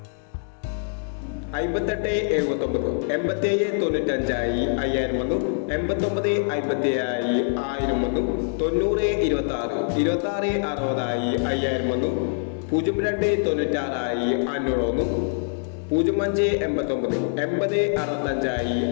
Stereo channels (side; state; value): right; silent; digital silence